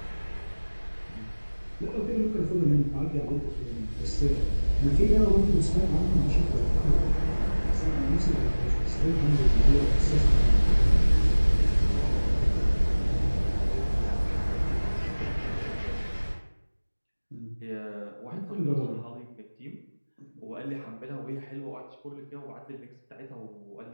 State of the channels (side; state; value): both; inverted; correlation -1.00